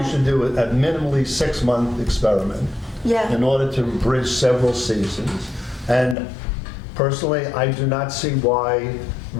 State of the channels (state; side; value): drops out; right; at 6.2 s